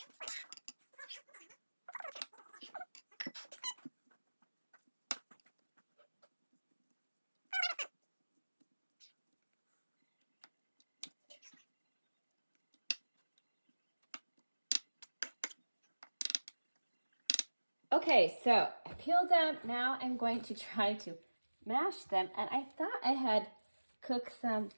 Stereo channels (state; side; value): inverted; both; correlation -1.00